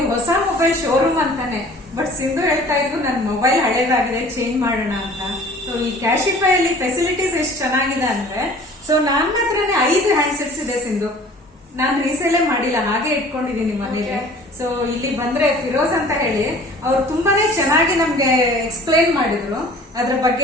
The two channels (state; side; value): normal; both; correlation 0.48